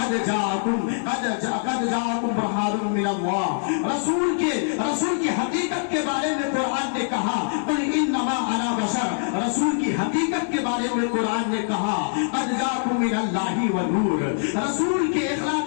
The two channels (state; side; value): silent; right; digital silence